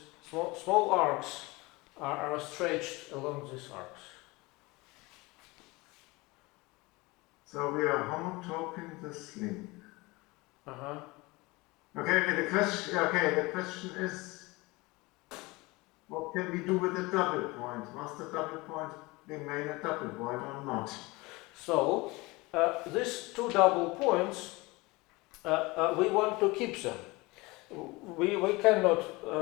small arcs are stretched along these arcs. So we are homotoping this link. Uh-huh. Okay, the question is, what can we do with the double point? Must the double point remain a double point or not? So these two double points, we want to keep them. We cannot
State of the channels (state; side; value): quieter; right; 23.2 dB